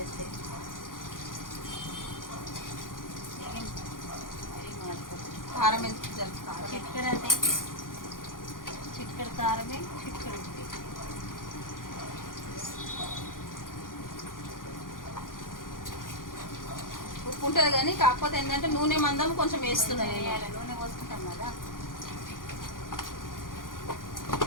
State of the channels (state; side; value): late; right; 0.90 ms